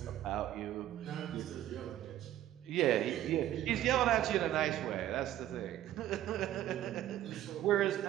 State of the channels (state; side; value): quieter; left; 12.9 dB